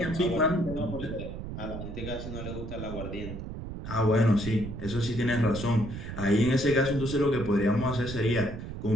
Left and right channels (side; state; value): right; noise; rumble, 8 dB below the sound